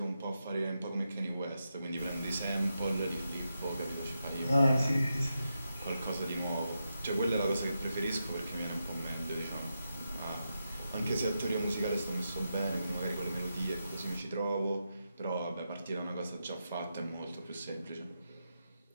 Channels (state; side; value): inverted; both; correlation -0.86